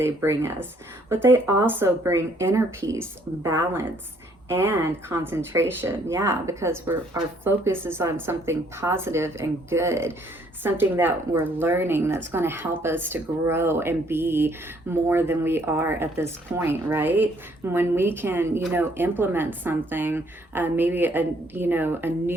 bring us. But they also bring inner peace, balance, and concentration. Yeah, because our focus is on something positive and good, something that we're learning that's going to help us to grow and be more than we are at this point, right? When we can, you know, implement something, maybe a, you know, a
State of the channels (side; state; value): both; normal; correlation 0.65